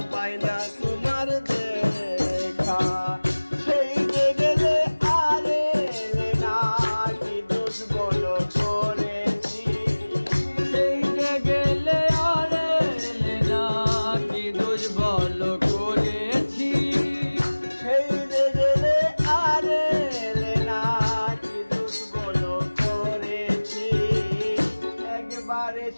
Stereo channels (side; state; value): both; inverted; correlation -1.00